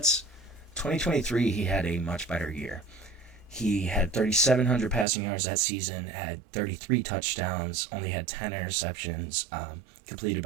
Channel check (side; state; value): left; drops out; at 5.1 s